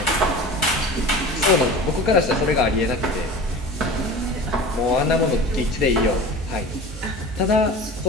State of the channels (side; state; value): both; normal; correlation 0.36